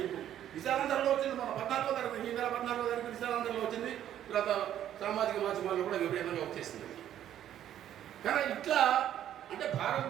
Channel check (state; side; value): quieter; left; 11.1 dB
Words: విశాలాంధ్రలో వచ్చింది, మన 14వ తరగతి ఈ నెల 14వ తరగతి విశాలాంధ్రలో వచ్చింది, తర్వాత సామాజిక మాధ్యమాల్లో కూడా విపరీతంగా వచ్చేసింది. కానీ ఇట్లా అంటే